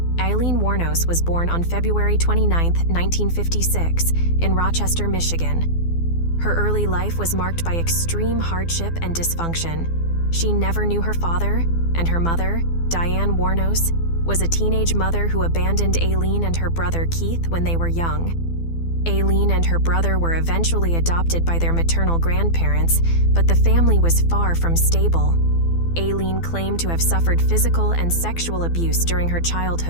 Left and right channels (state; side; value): late; right; 12 ms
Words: Aileen Wuornos was born on February 29, 1956, in Rochester, Michigan. Her early life was marked by extreme hardship and dysfunction. She never knew her father, and her mother, Diane Wuornos, was a teenage mother who abandoned Aileen and her brother Keith when they were young. Aileen and her brother were eventually adopted by their maternal grandparents, but the family was far from stable. Aileen claimed to have suffered physical and sexual abuse during her